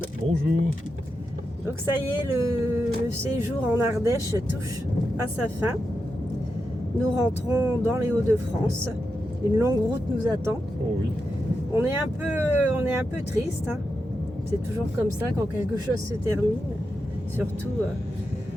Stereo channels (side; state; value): both; normal; correlation 0.88